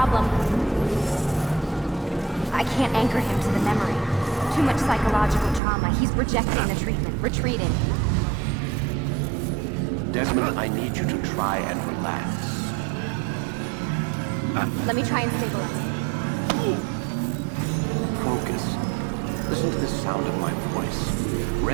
I can't anchor him to the memory. Too much psychological trauma. He's rejecting the treatment, retreating. Desmond, I need you to try and relax. Let me try and stabilize. Focus. Listen to the sound of my voice.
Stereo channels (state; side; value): drops out; left; at 5.6 s